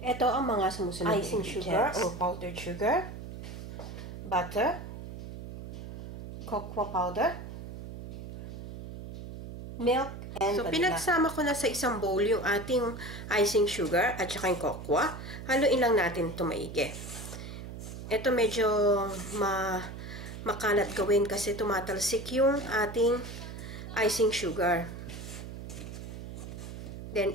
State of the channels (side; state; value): right; noise; hum, 10 dB below the sound